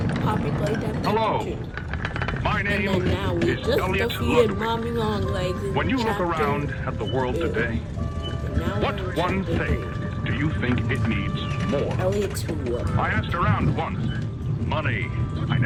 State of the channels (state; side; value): identical; both; correlation 1.00